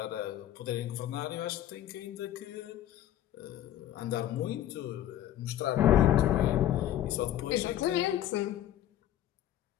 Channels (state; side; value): quieter; right; 12.2 dB